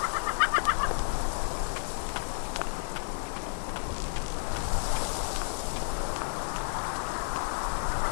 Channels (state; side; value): silent; right; digital silence